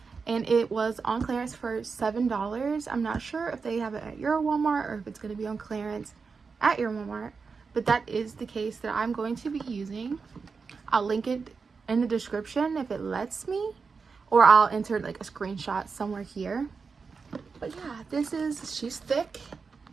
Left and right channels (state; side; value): quieter; left; 5.0 dB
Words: and it was on clearance for $7. I'm not sure if they have it at your Walmart or if it's going to be on clearance at your Walmart, but that is the case that I'm going to be using. I'll link it in the description if it lets me, or I'll enter like a screenshot somewhere here. But yeah, she's thick.